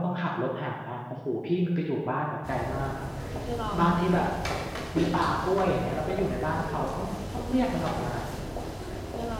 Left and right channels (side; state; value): both; identical; correlation 1.00